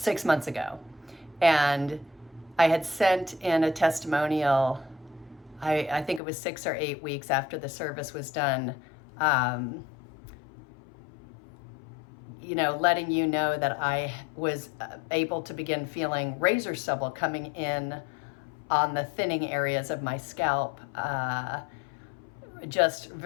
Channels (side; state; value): right; drops out; at 6.2 s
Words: months ago. And I had sent in a testimonial, I think it was 6 or 8 weeks after the service was done, letting you know that I was able to begin feeling razor stubble coming in on the thinning areas of my scalp just